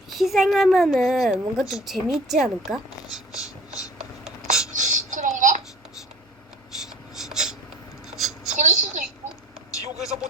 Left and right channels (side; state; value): both; normal; correlation 0.45